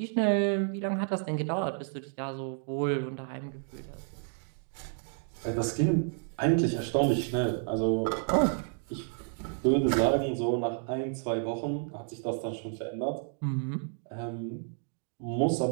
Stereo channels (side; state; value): left; silent; 57 dB below the other